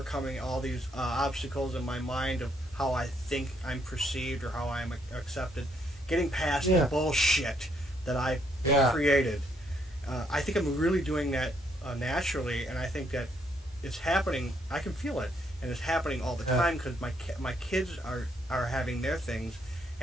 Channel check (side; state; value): both; normal; correlation 0.72